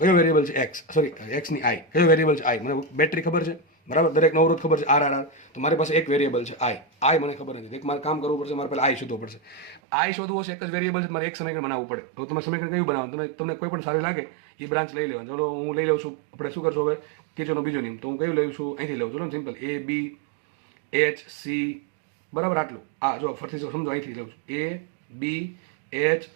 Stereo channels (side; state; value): left; drops out; at 9.8 s